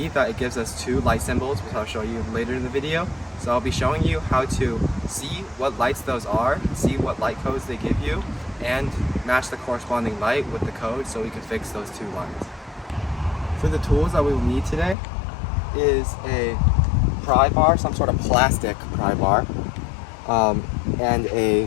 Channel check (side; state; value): right; drops out; at 15.0 s